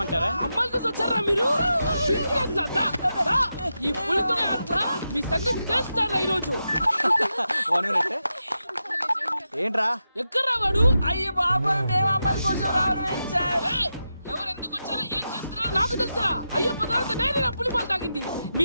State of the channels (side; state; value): both; inverted; correlation -0.88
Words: అమ్మాయిల కోసం వచ్చారా మీరు? ఈ పులితోనే అట్లా మీ సంగతి తెలుస్తారా ఈరోజు? ఏంట్రా ఎక్కడ రావాడు? అయ్యో బాబా, మేము అమ్మాయిల కోసం రావడం ఏంటి సార్? ఎవరు ఎందుకు వచ్చారో ఏం చేస్తున్నారో నాకు తెలుసా? అయ్యో పదార్థ నేనే నా పులిపాలు తాగింది.